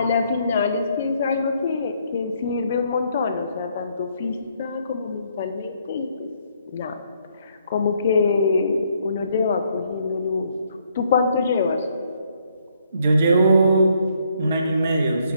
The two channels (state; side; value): inverted; both; correlation -0.70